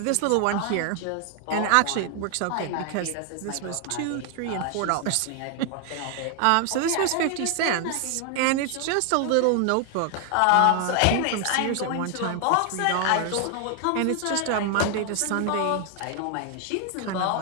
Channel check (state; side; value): different; both; correlation 0.00